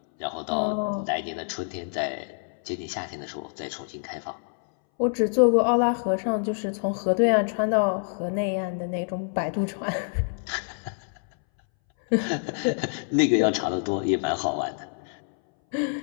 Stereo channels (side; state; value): right; silent; 61 dB below the other